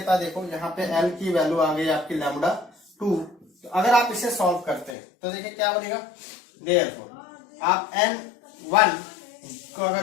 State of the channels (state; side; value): drops out; right; at 5.0 s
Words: है देखो, यहाँ पे L की वैल्यू आ गई आपकी λ2। तो अगर आप इसे सॉल्व करते हैं तो देखिए क्या बनेगा। देयरफॉर आप n1 को